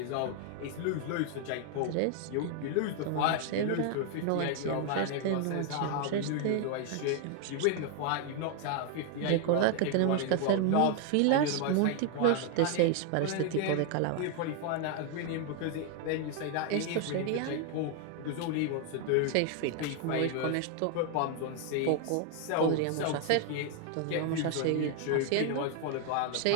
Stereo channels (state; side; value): different; both; correlation 0.00